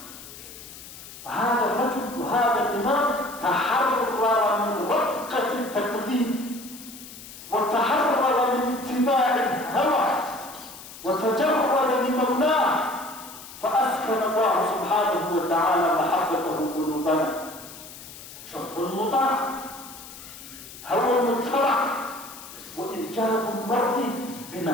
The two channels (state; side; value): noise; left; hiss, 15 dB below the sound